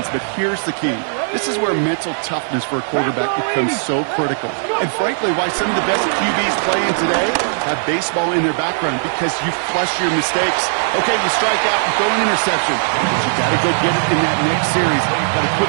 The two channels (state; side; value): silent; left; digital silence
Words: but here's the key. This is where mental toughness for a quarterback becomes so critical. And frankly, why some of the best QBs playing today have baseball in their background, because you flush your mistakes. Okay, you strike out and throw an interception, but you got to go get it in that next series. Got to put